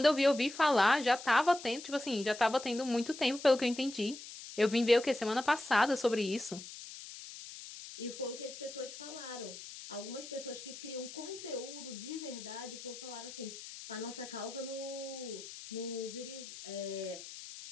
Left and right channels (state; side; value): noise; left; hiss, 13 dB below the sound